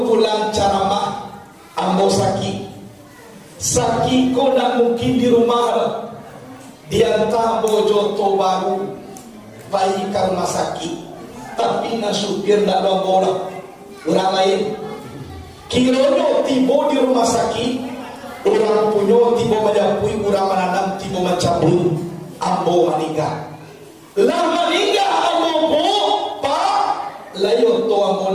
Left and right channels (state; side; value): identical; both; correlation 1.00